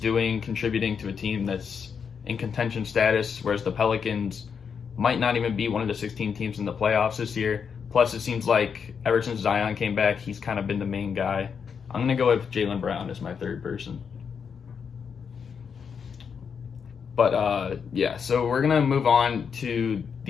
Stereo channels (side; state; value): right; quieter; 6.6 dB